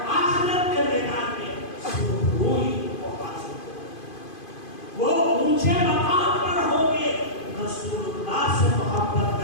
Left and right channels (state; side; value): late; right; 2.5 ms